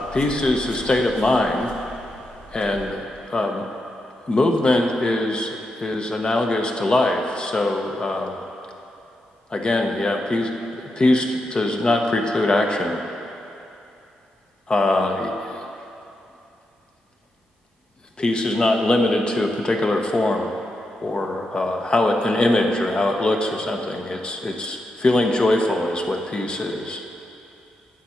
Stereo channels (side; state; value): both; normal; correlation 0.85